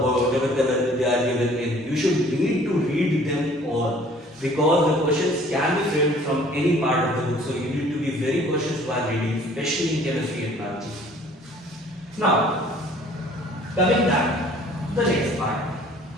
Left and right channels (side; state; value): both; normal; correlation 0.53